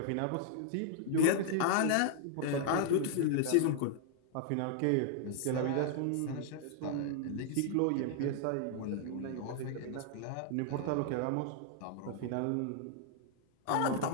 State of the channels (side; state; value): both; different; correlation -0.01